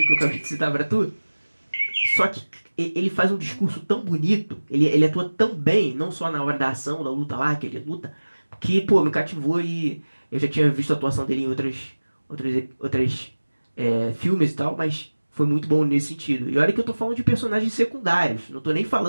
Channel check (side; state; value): both; inverted; correlation -1.00